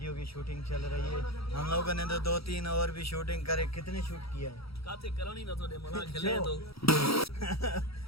की शूटिंग चल रही है। हम लोगों ने तो 2-3 और भी शूटिंग करे। कितने शूट किया है? काते करनी ना थोड़े मना खेले तो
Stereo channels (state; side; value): late; right; 0.76 ms